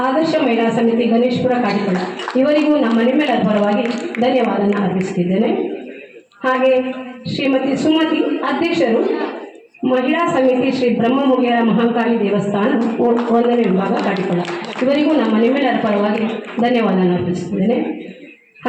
ಆದರ್ಶ ಮಹಿಳಾ ಸಮಿತಿ ಗಣೇಶ್ಪುರ ಕಾಟಿಕೊಳ್ಳ, ಇವರಿಗೂ ನಮ್ಮ ನಿಮ್ಮೆಲ್ಲರ ಪರವಾಗಿ ಧನ್ಯವಾದವನ್ನು ಅರ್ಪಿಸುತ್ತಿದ್ದೇನೆ. ಹಾಗೆ ಶ್ರೀಮತಿ ಸುಮತಿ, ಅಧ್ಯಕ್ಷರು ಮಹಿಳಾ ಸಮಿತಿ ಶ್ರೀ ಬ್ರಹ್ಮಮುಗಿಯರ ಮಹಾಕಾಳಿ ದೇವಸ್ಥಾನ 1ನೇ ವಿಭಾಗ ಕಾಟಿಕೊಳ್ಳ, ಇವರಿಗೂ ನಮ್ಮ ನಿಮ್ಮೆಲ್ಲರ ಪರವಾಗಿ ಧನ್ಯವಾದವನ್ನು ಅರ್ಪಿಸುತ್ತಿದ್ದೇನೆ.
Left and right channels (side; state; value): both; identical; correlation 1.00